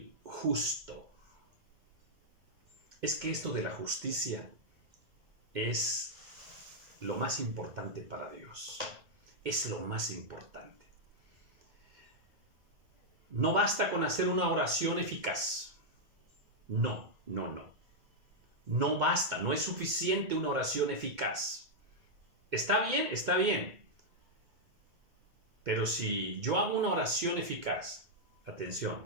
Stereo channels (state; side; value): late; left; 2.2 ms